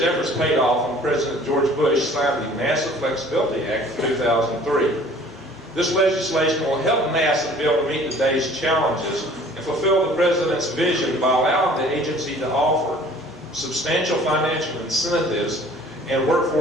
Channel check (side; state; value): both; normal; correlation 0.51